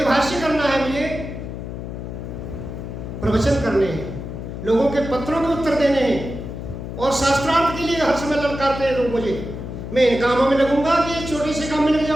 भाष्य करना है, मुझे प्रवचन करने हैं, लोगों के पत्रों के उत्तर देने हैं और शास्त्रार्थ के लिए हर समय ललकारते हैं लोग मुझे। मैं इन कामों में लगूंगा कि एक छोटे से काम में लग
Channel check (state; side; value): noise; left; hum, 8 dB below the sound